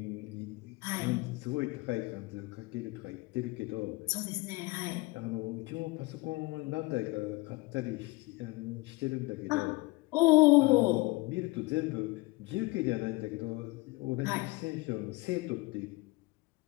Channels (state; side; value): quieter; right; 23.3 dB